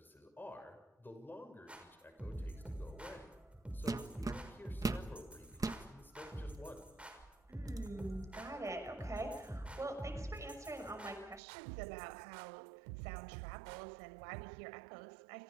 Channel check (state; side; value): drops out; left; at 11.4 s